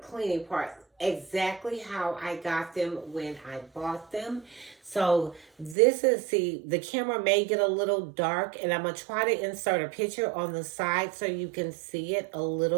part, exactly how I got them when I bought them. So this is, see, the camera may get a little dark, and I'm going to try to insert a picture on the side so you can see it a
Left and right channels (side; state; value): left; drops out; at 5.8 s